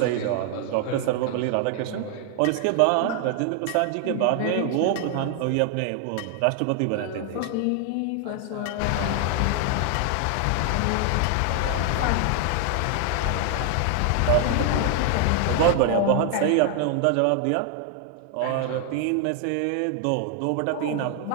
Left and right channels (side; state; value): both; different; correlation 0.00